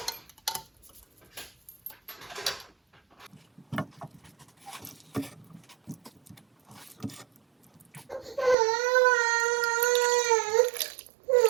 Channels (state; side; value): drops out; left; at 8.6 s